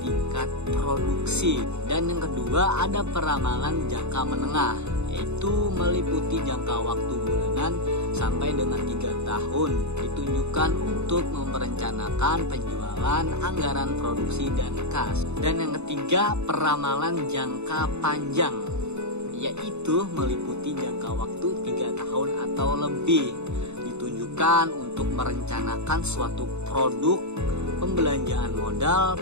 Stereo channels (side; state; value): left; late; 0.81 ms